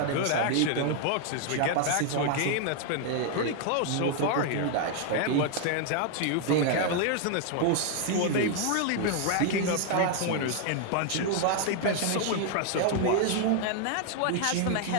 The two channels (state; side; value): different; both; correlation 0.00